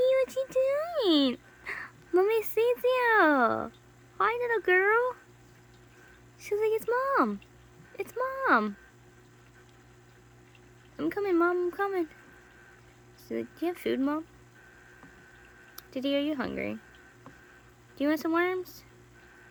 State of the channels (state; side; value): identical; both; correlation 1.00